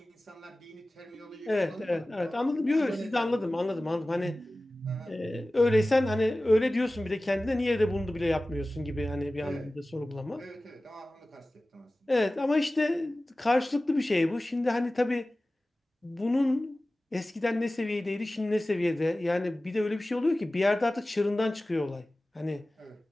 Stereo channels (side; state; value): both; normal; correlation 0.97